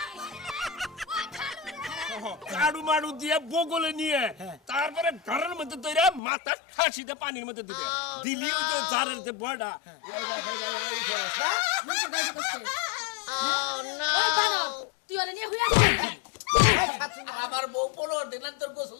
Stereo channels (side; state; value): right; drops out; at 6.2 s